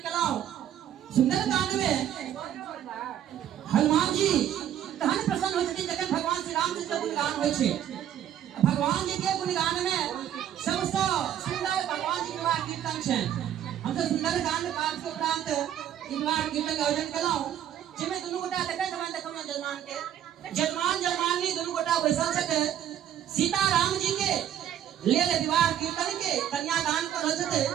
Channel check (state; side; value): quieter; left; 10.5 dB